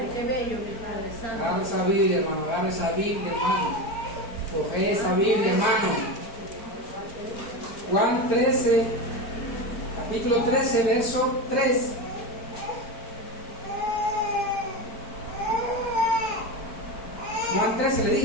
qué bello, mi Padre Santo. Agarra esa Biblia, hermano. Agarra esa Biblia, hermano. Coge esa Biblia, hermano. Juan 13, capítulo 13, verso 3. Juan 13 le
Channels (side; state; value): right; late; 4.5 ms